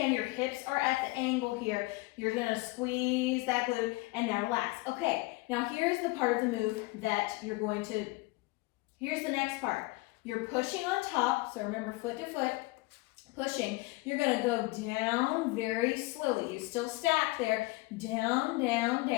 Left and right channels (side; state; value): right; quieter; 22.8 dB